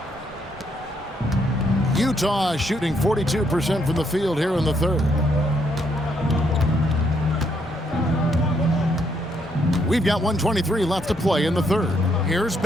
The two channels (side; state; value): both; normal; correlation 0.73